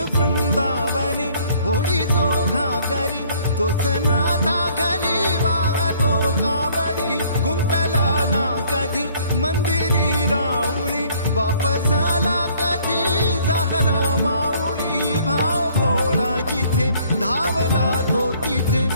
वृंदावनी होडी जो घागरी तोच नाथा घरी वाहतो कावडी गुंतला ना कधी मंदिरी राऊळी बाप झाला कधी झाला माऊली भाव भोळा जिथे धावला तो तिथे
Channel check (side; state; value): both; inverted; correlation -0.59